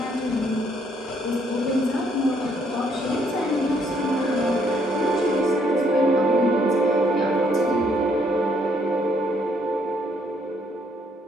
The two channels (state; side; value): normal; both; correlation 0.69